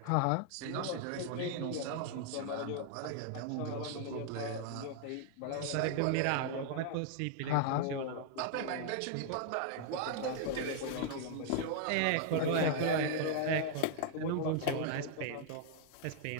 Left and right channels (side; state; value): both; different; correlation 0.00